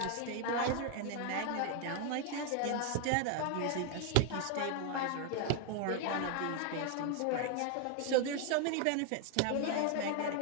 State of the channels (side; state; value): both; different; correlation 0.01